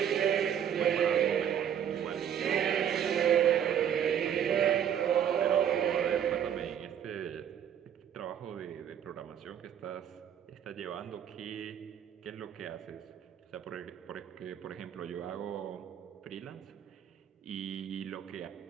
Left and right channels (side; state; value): left; quieter; 9.2 dB